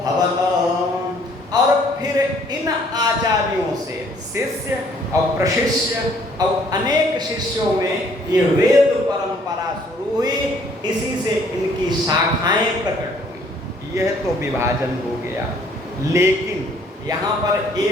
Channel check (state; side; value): normal; both; correlation 0.61